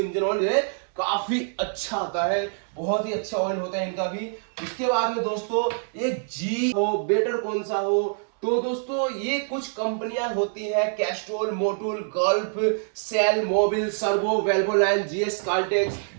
ऑयल जो है काफी अच्छा आता है, बहुत ही अच्छा ऑयल होता है इनका भी। उसके बाद में दोस्तों एक जी हो, बेटर कौन सा हो, तो दोस्तों ये कुछ कंपनियां होती हैं, Castrol, Motul, Gulf, Shell, Mobil, Servo, Valvoline, GS Caltex.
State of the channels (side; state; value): left; silent; 61 dB below the other